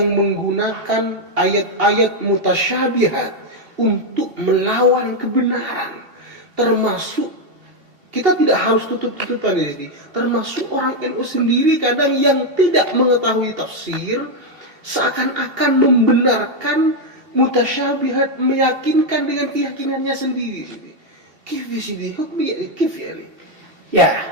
menggunakan ayat-ayat mutasyabihat untuk melawan kebenaran. Termasuk kita tidak harus tutup-tutupan di sini. Termasuk orang NU sendiri kadang yang tidak mengetahui tafsir seakan-akan membenarkan mutasyabihat, meyakinkan dengan keyakinannya sendiri. Kif sini, hukmi kif ya. Ya,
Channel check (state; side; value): late; left; 2.7 ms